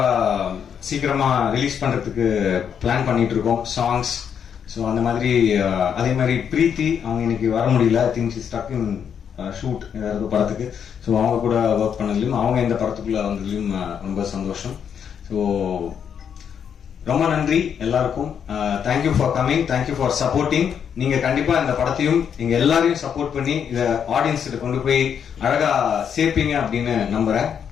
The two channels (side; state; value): right; quieter; 7.9 dB